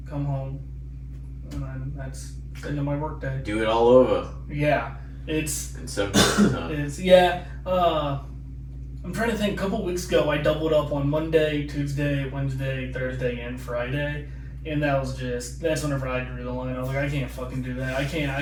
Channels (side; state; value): both; identical; correlation 1.00